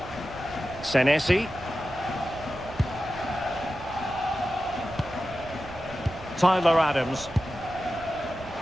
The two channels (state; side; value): noise; right; rumble, 17 dB below the sound